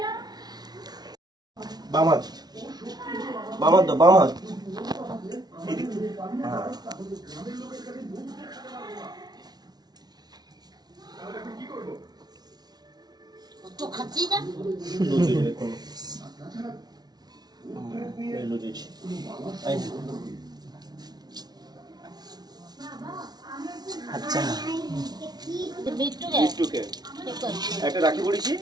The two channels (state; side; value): late; left; 0.19 ms